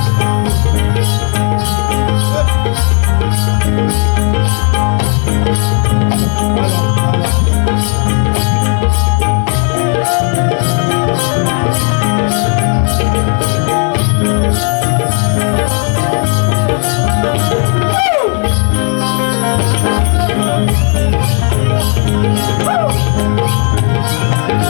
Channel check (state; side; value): quieter; right; 38.8 dB